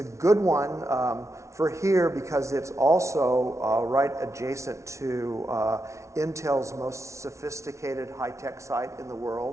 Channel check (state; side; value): late; left; 0.14 ms